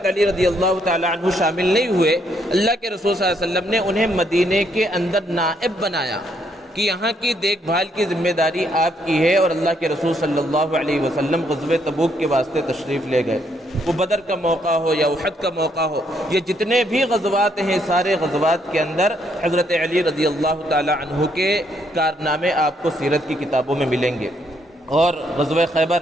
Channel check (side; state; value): both; normal; correlation 0.72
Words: علی رضی اللہ تعالی عنہ شامل نہیں ہوئے، اللہ کے رسول صلی اللہ علیہ وسلم نے انہیں مدینے کے اندر نائب بنایا کہ یہاں کی دیکھ بھال کی ذمہ داری آپ کی ہے، اور اللہ کے رسول صلی اللہ علیہ وسلم غزوہ تبوک کے واسطے تشریف لے گئے۔ وہ بدر کا موقع ہو یا احد کا موقع ہو، یہ جتنے بھی غزوات ہیں سارے غزوات کے اندر حضرت علی رضی اللہ تعالی عنہ کے کارنامے آپ کو سیرت کی کتابوں میں ملیں گے۔ اور غزوہ